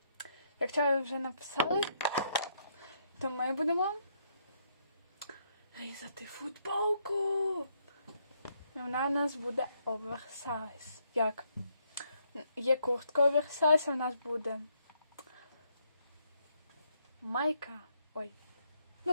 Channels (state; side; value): inverted; both; correlation -0.74